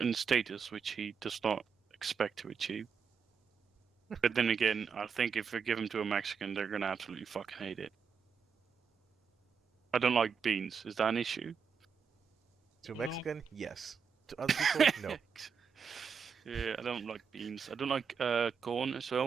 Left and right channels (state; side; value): quieter; left; 6.2 dB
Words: status which he does not expect to achieve. But then again, I think if I give them to a Mexican, they're gonna absolutely fucking hate it. I don't like beans. Is that an issue? To a Mexican, yes. To other people, no. Yeah, I don't like beans. I don't like corn as